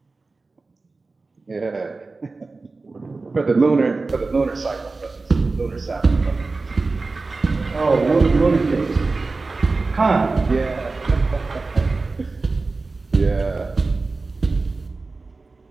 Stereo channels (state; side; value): quieter; left; 3.7 dB